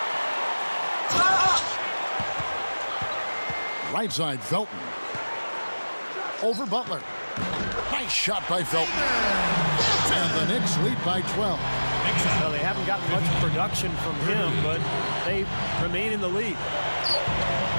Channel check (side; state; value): both; inverted; correlation -1.00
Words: Right side, Felton. Over Butler. Nice shot by Felton. And the Knicks lead by 12. Well, they haven't gotten much production from him, but they remain in the lead.